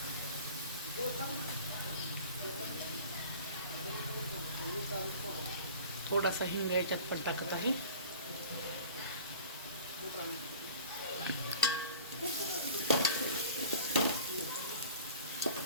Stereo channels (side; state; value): both; inverted; correlation -0.43